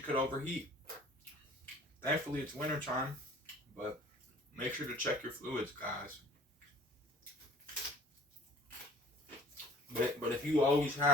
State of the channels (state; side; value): normal; both; correlation 0.48